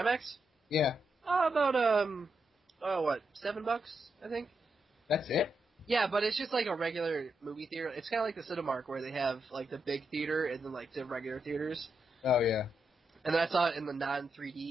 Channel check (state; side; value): normal; both; correlation 0.83